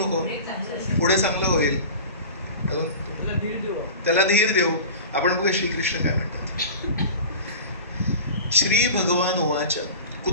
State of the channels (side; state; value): both; inverted; correlation -0.35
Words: पुढे चांगलं होईल, त्याला धीर देऊ. आपण बघूया श्रीकृष्ण काय म्हणतात. श्री भगवान उवाच